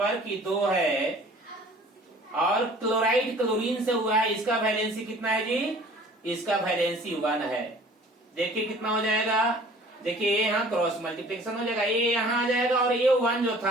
कि 2 है और क्लोराइड क्लोरीन से हुआ है, इसका वैलेंसी कितना है जी? इसका वैलेंसी 1 है। देखिए कितना हो जाएगा, देखिए ये यहाँ क्रॉस मल्टीप्लिकेशन हो जाएगा, ये यहाँ आ जाएगा और ये 1 जो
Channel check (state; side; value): normal; both; correlation 0.50